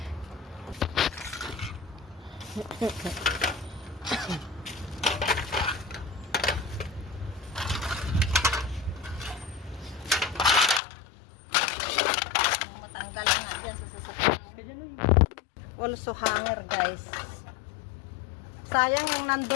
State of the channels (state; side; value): drops out; right; at 10.8 s